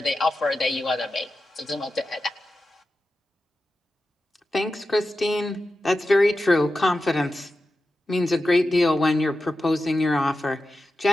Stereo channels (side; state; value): both; normal; correlation 0.92